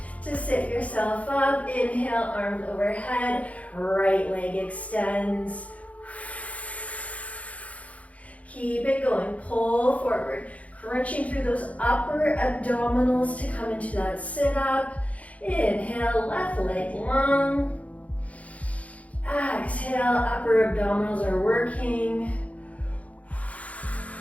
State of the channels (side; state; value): right; late; 0.067 ms